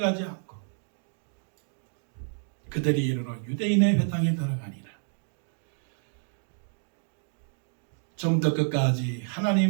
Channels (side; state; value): left; silent; 58 dB below the other